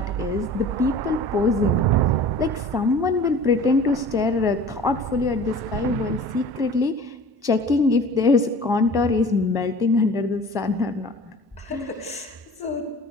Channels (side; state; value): left; late; 1.1 ms